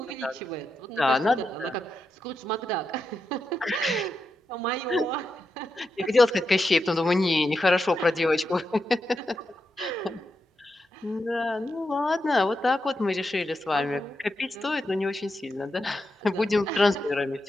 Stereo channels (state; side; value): normal; both; correlation 0.86